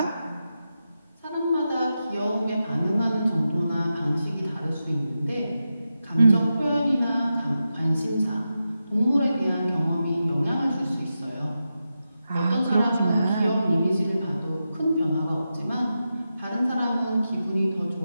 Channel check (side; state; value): both; inverted; correlation -0.90